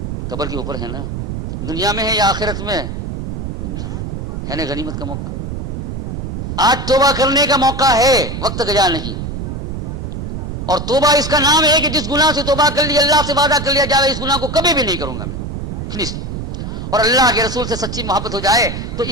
قبر کے اوپر ہے نا. دنیا میں ہے یا آخرت میں؟ دنیا میں ہے نا. غنیمت کا موقع آج توبہ کرنے کا موقع ہے، وقت گزار نہیں. اور توبہ اس کا نام ہے کہ جس گناہ سے توبہ کر لی، اللہ سے وعدہ کر لیا جائے اس گناہ کو کبھی بھی نہیں کروں گا میں، فنش. اور اللہ کے رسول سے سچی محبت ہو جائے تو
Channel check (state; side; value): noise; right; rumble, 5 dB below the sound